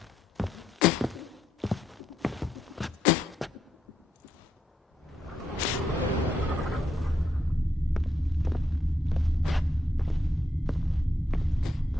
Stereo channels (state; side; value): normal; both; correlation 0.79